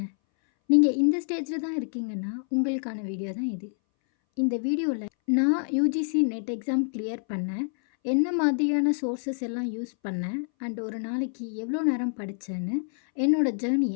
நீங்கள் இந்த ஸ்டேஜில் தான் இருக்கீங்கன்னா உங்களுக்கான வீடியோ தான் இது. இந்த வீடியோவில் நான் யூஜிசி நெட் எக்ஸாம் கிளியர் பண்ணேன், என்ன மாதிரியான சோர்ஸஸ் எல்லாம் யூஸ் பண்ணேன் அண்ட் ஒரு நாளைக்கு எவ்வளோ நேரம் படித்தேன்னு என்னோடய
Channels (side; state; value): right; silent; 60 dB below the other